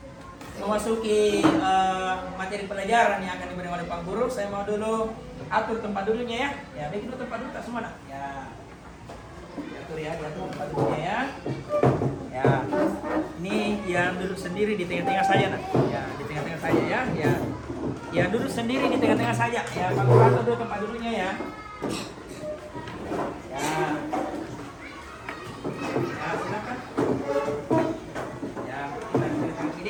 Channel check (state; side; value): identical; both; correlation 1.00